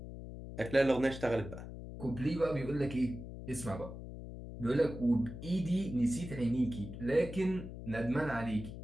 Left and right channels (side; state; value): left; noise; hum, 10 dB below the sound